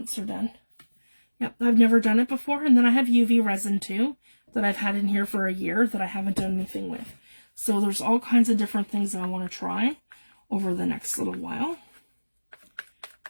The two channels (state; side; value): inverted; both; correlation -1.00